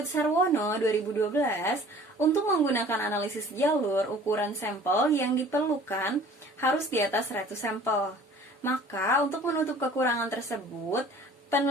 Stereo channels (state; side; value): normal; both; correlation 0.49